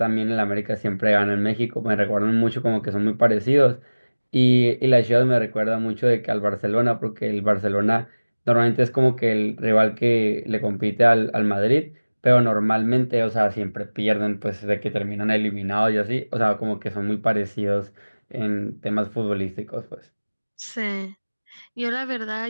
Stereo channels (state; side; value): inverted; both; correlation -1.00